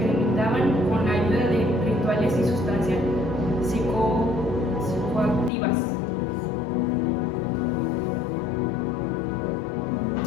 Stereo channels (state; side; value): drops out; right; at 5.5 s